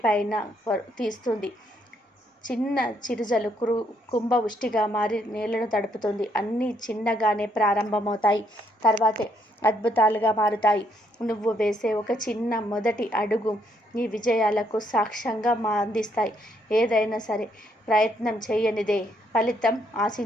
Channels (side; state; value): both; normal; correlation 0.72